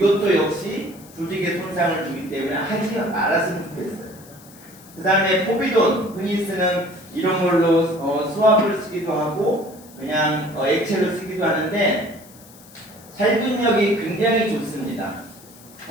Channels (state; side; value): noise; left; hiss, 22 dB below the sound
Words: 역시 조직에 손상을 주기 때문에 하지 말았으면 좋겠어요. 그 다음에 포비돈 흔히 쓰는 이런 걸로 수압을 쓰기도 하고 그냥 액체로 쓰기도 하는데 살균력이 굉장히 좋습니다.